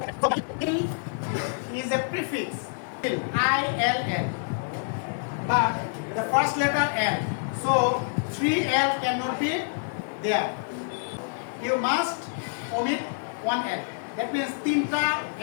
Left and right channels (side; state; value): right; silent; digital silence